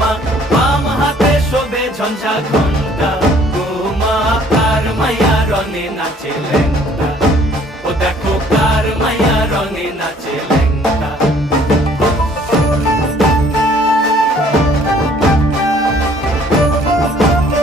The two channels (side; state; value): both; normal; correlation 0.58